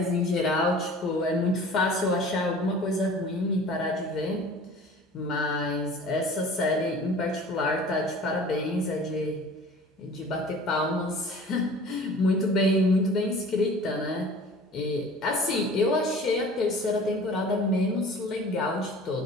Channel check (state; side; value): normal; both; correlation 0.45